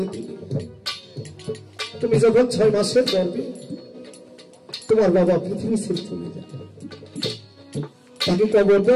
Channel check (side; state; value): both; identical; correlation 1.00